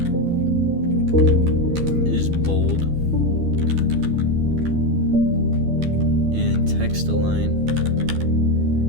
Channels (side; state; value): left; late; 12 ms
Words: is bold, and text align